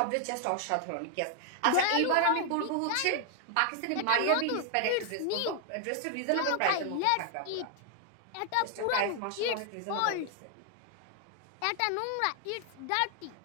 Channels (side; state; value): both; different; correlation 0.00